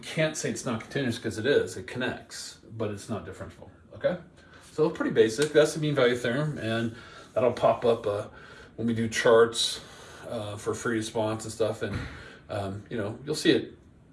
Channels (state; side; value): identical; both; correlation 1.00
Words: say it's not continuous because it is. It connects, but it's not differentiable, okay? So pretty basic. That's the mean value theorem, and that'll pop up when we do charts for free response and stuff. And, you know, you'll see it